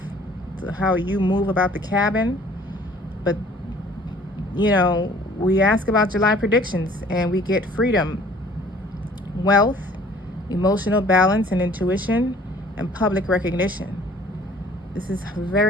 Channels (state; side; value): normal; both; correlation 0.54